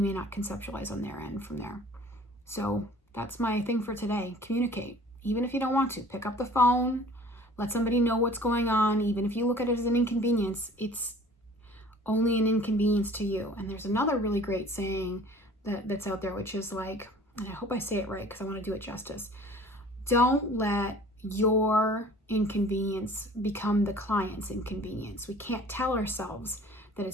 may not conceptualize on their end from there. So that's my thing for today. Communicate. Even if you don't want to, pick up the phone, let somebody know what's going on. Even if you look at it as an inconvenience, it's only an inconvenience to you. And there's another really great saying that's out there, which is like, and I hope I say it right because I want to do it justice. Don't let your inconvenience become the client's inconvenience. We can't tell ourselves that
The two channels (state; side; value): normal; both; correlation 0.48